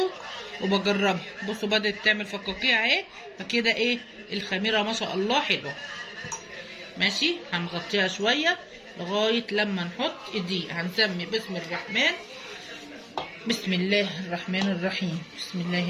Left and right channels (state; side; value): identical; both; correlation 1.00